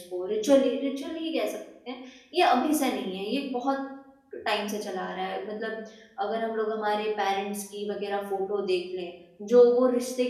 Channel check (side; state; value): both; identical; correlation 1.00